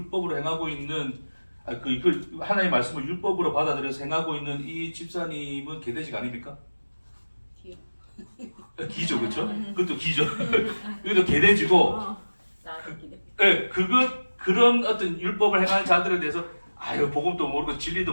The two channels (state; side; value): inverted; both; correlation -1.00